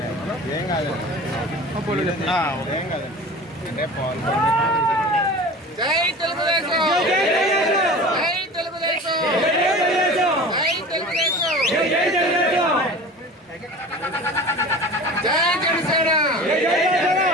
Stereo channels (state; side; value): normal; both; correlation 0.37